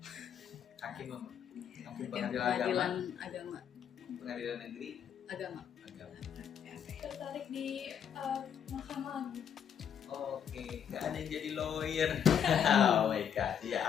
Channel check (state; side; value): quieter; right; 8.4 dB